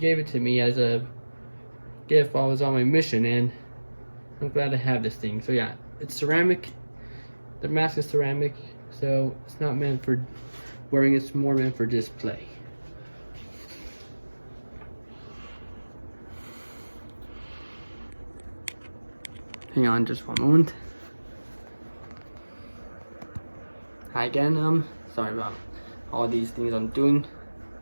it to me as a gift while I was on my mission, and I'm glad to have this thing. So yeah, it's ceramic. The mask is ceramic, so it's not meant for wearing, it's more meant for display. Hang on just one moment. Hi again, sorry about all these things I'm doing.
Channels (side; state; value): both; inverted; correlation -1.00